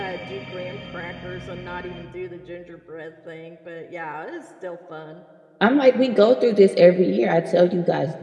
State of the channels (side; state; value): both; identical; correlation 1.00